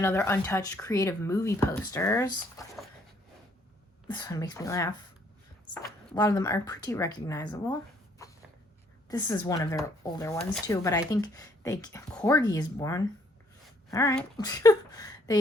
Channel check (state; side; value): normal; both; correlation 0.66